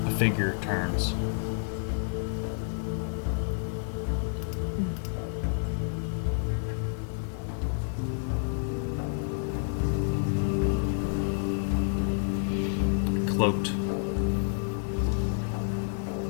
a figure turns. Cloaked.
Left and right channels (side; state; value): right; silent; 58 dB below the other